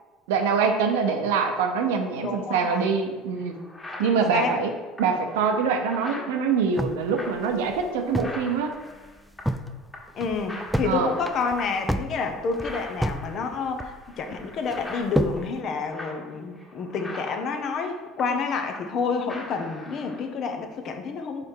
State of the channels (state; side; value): normal; both; correlation 0.33